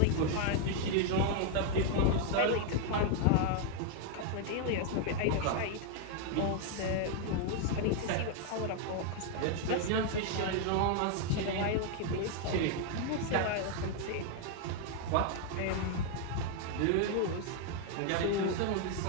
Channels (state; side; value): different; both; correlation 0.00